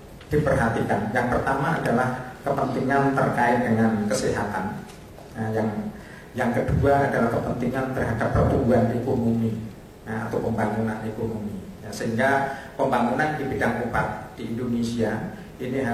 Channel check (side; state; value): both; identical; correlation 1.00